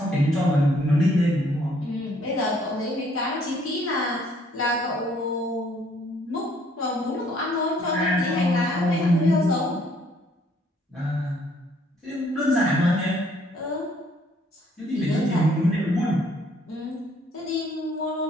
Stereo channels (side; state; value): both; normal; correlation 0.63